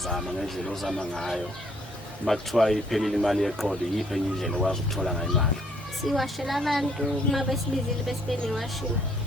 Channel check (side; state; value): both; normal; correlation 0.65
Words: ngendlela ozama ngayo makuthiwa iphelile imali yeqolo yiphi enye indlela okwazi ukuthola ngayo imali? Siwashela abantu uma besibizile bese benewashini